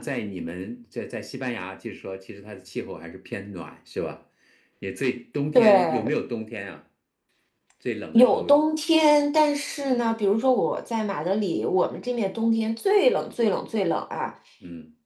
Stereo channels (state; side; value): identical; both; correlation 1.00